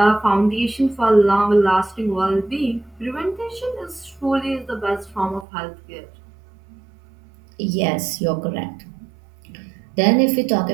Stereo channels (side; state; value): left; drops out; at 5.5 s